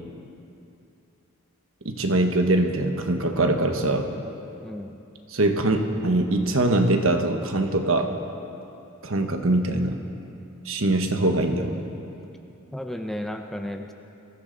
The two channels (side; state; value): both; normal; correlation 0.34